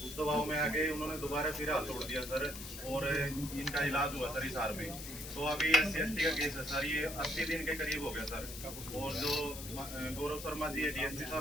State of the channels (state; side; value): noise; left; hiss, 10 dB below the sound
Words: उस दबाव में आके उन्होंने दोबारा फिर हाथ तोड़ दिया सर और इनका इलाज हुआ सर हिसार में। तो अभी SC/ST का केस है सर, ये 80 दिन के करीब हो गया सर। और जो गौरव शर्मा जी है DSP